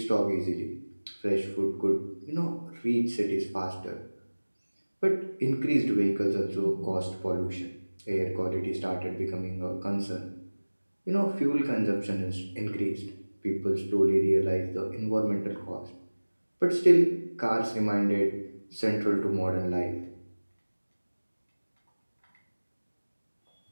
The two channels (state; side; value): inverted; both; correlation -1.00